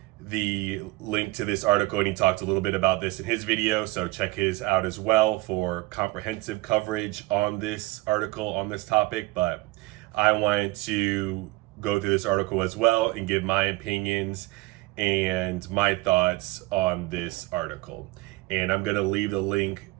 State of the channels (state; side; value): quieter; left; 20.9 dB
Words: the link to this article and he talked a little bit about this in his video, so check his out as well for comprehensive coverage on this article, on this topic. But I wanted to go through this article as well and give my opinions and my thoughts on this article. And I'm going to leave the link